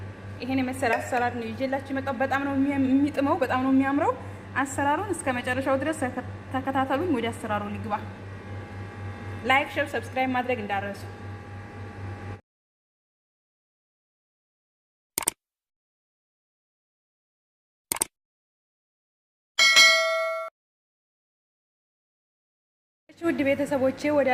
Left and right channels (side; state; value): both; identical; correlation 1.00